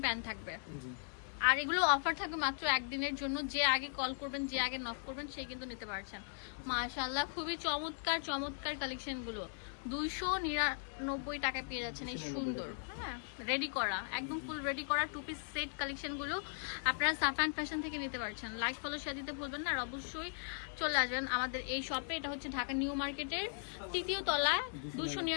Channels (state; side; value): silent; right; digital silence